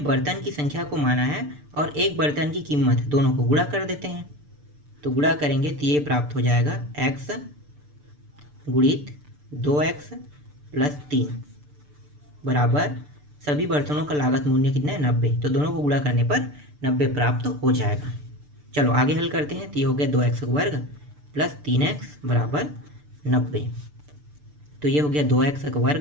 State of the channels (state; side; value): late; left; 6.8 ms